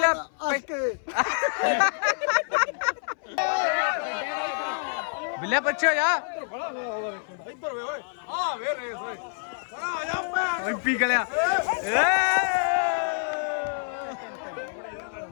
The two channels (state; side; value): silent; right; 60 dB below the other